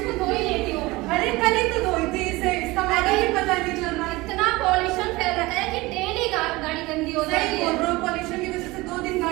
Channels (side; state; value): left; quieter; 21.3 dB